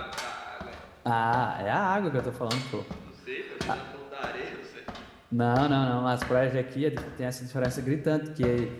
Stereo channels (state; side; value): identical; both; correlation 1.00